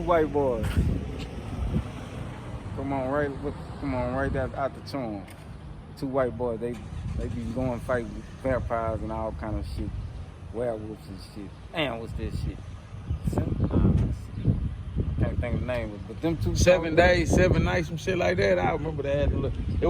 boys. Come on right out the Chom. Two white boys, they be going fight with vampires and all kind of shit. Werewolves and shit. Damn, what's this shit? Can't think of the name of it, but them two 7 days, 7 nights, some shit like that. I remember that. It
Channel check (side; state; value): both; identical; correlation 1.00